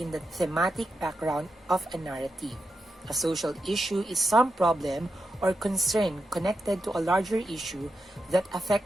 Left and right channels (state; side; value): normal; both; correlation 0.87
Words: the thematic background of a narrative. A social issue is some problem or concern connected to a larger issue that